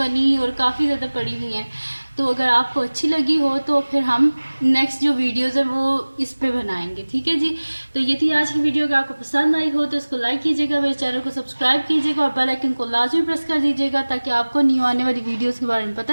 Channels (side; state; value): both; inverted; correlation -1.00